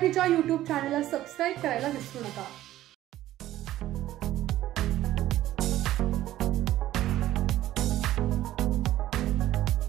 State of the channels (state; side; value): quieter; left; 14.1 dB